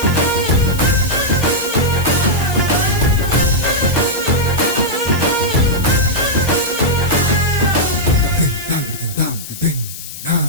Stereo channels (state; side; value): noise; left; hiss, 11 dB below the sound